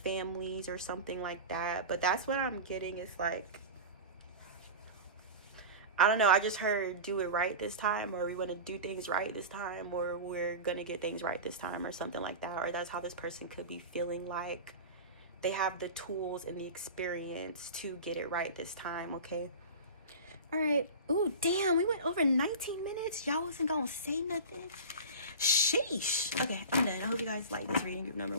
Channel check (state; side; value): inverted; both; correlation -0.30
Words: or something like that. But that's what I'm getting. Is like, I don't know, I just heard do it right this time, or we want to do things right this time, or we're gonna get things right this time, or something like that. Or that's how this person could be feeling like they have the tools and the experience to get it right this time, okay? All right. Ooh, damn, we went over 19 minutes. Y'all wasn't gonna say nothing. Sheesh. Okay, I'm done. I hope you guys like this reading group number